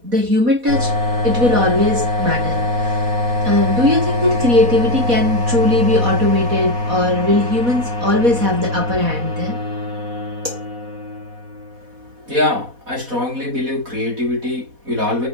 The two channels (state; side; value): late; left; 4.1 ms